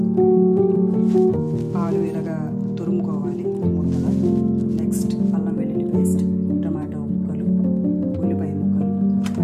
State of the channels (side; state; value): both; identical; correlation 1.00